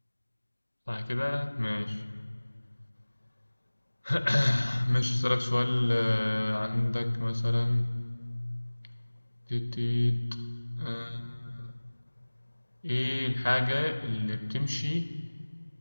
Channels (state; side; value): inverted; both; correlation -1.00